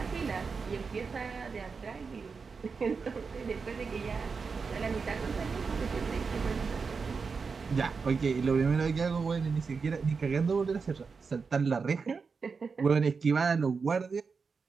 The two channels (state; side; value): quieter; left; 5.1 dB